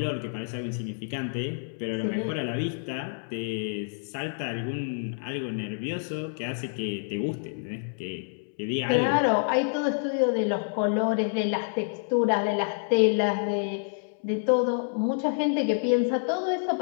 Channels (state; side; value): silent; right; 59 dB below the other